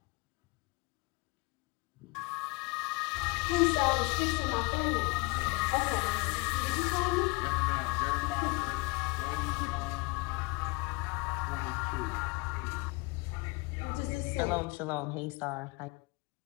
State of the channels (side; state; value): right; quieter; 26.5 dB